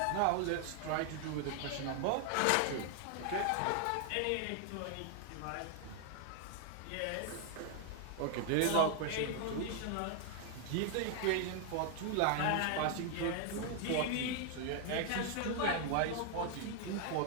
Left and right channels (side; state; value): both; different; correlation 0.00